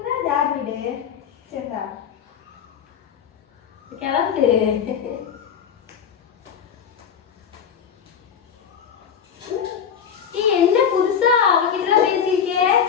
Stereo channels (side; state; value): right; quieter; 7.7 dB